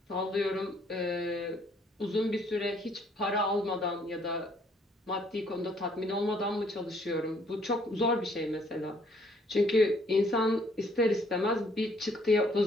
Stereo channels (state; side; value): normal; both; correlation 0.64